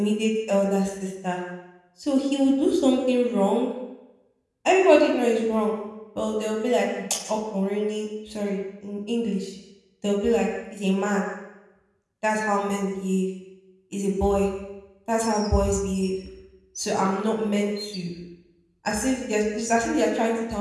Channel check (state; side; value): identical; both; correlation 1.00